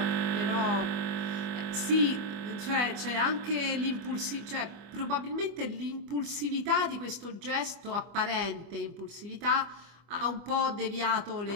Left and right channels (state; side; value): late; left; 25 ms